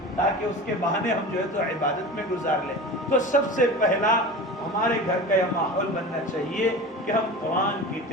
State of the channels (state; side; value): normal; both; correlation 0.32